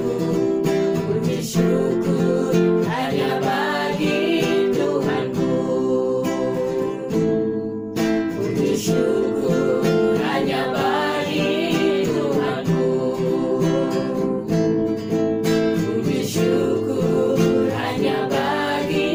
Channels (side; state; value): both; identical; correlation 1.00